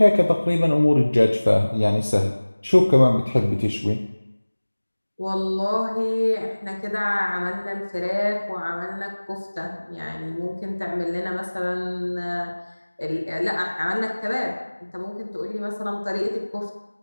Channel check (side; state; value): both; inverted; correlation -1.00